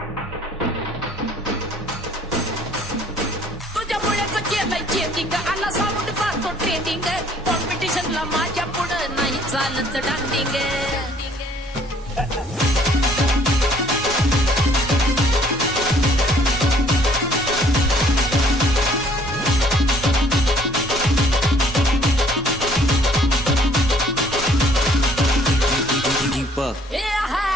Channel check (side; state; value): both; normal; correlation 0.59